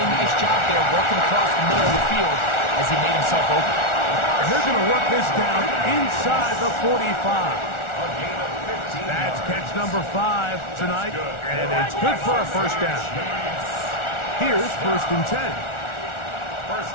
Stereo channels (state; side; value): late; right; 1.4 ms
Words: nice job there working across the middle of the field as he made himself open. And they're going to work this down inside the 45. That's catch number 5 tonight, and it's good for a first down. Here's first and 10. First